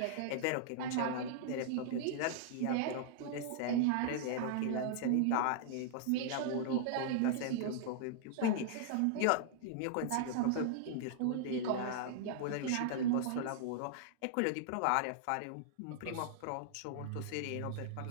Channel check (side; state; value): both; different; correlation -0.01